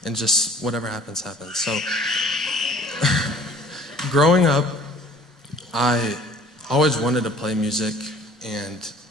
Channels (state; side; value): normal; both; correlation 0.52